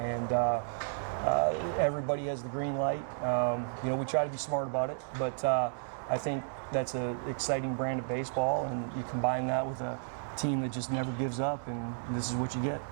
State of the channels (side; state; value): left; silent; digital silence